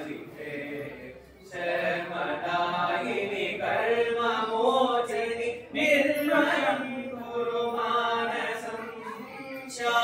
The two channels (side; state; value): both; identical; correlation 1.00